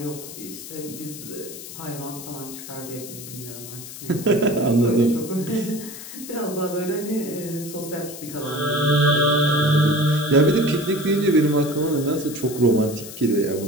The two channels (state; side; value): noise; left; hiss, 12 dB below the sound